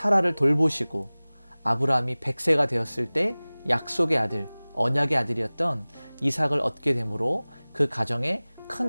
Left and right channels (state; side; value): inverted; both; correlation -1.00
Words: 돌보시고 아브라함이 100세가 되었을 때 약속의 아들, 언약의 아들이었던 이삭을 얻게 되므로 그 가정에